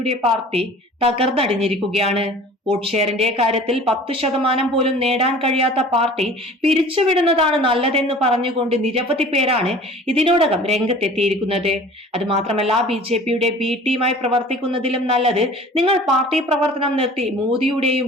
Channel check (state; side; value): normal; both; correlation 0.44